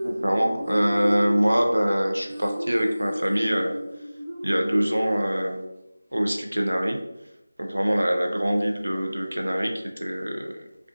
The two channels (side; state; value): both; inverted; correlation -0.98